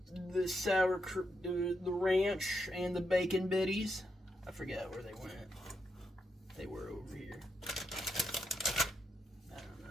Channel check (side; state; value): both; normal; correlation 0.82